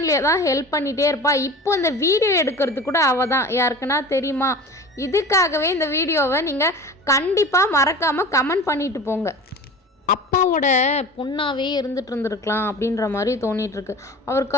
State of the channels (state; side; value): normal; both; correlation 0.36